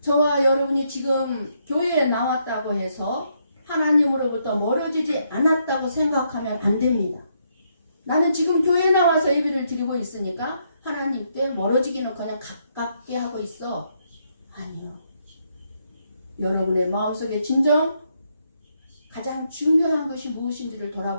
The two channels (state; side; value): inverted; both; correlation -0.76